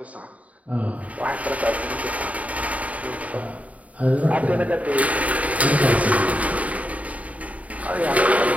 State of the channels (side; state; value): left; late; 0.069 ms